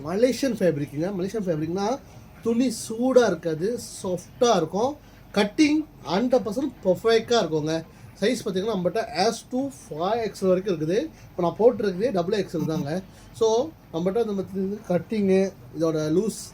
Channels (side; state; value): both; identical; correlation 1.00